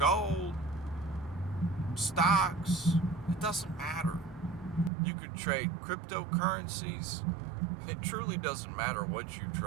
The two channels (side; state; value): left; drops out; at 4.9 s